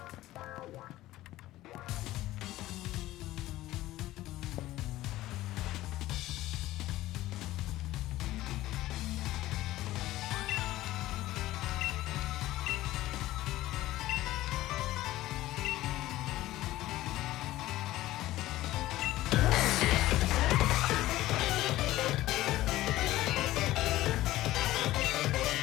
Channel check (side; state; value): right; quieter; 16.1 dB